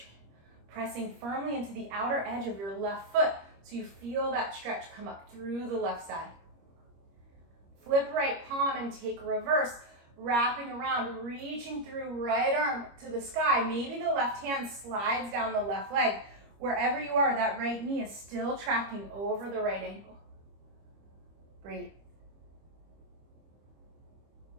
pressing firmly into the outer edge of your left foot so you feel that stretch come up through the left side. Flip right palm and take reverse, wrapping around, reaching through right arm to the sky. Maybe the left hand slides down the left leg. Wherever you are, that right knee is still tracking over the right ankle. Breathe.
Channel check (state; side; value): late; left; 25 ms